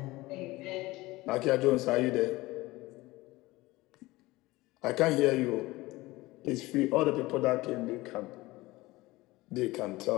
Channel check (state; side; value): quieter; right; 19.9 dB